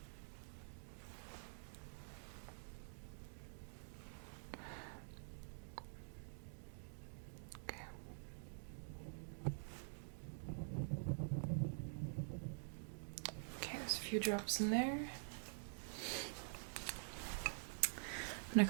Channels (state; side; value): silent; left; digital silence